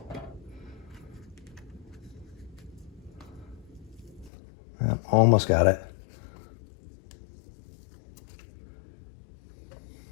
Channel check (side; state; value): right; drops out; at 4.3 s